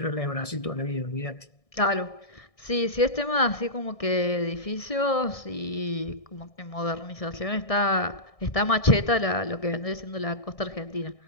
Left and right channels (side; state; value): right; late; 1.6 ms